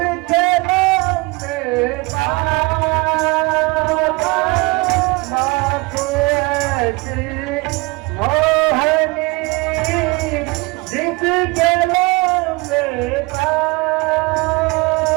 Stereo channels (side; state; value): left; quieter; 25.3 dB